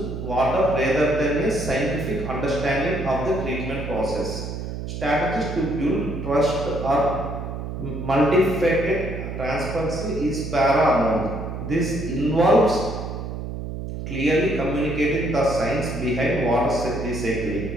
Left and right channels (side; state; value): right; noise; hum, 6 dB below the sound